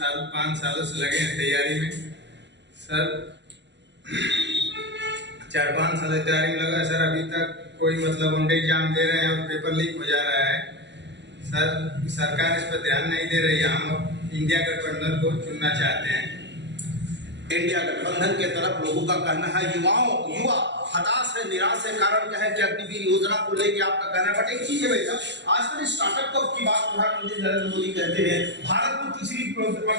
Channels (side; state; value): left; late; 0.51 ms